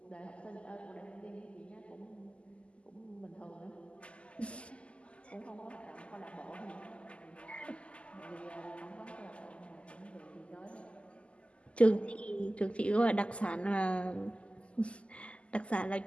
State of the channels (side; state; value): right; late; 0.056 ms